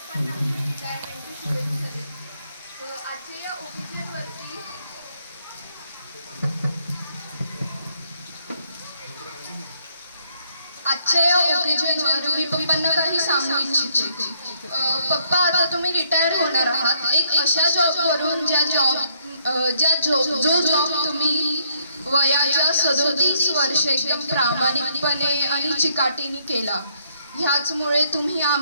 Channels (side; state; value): both; inverted; correlation -0.70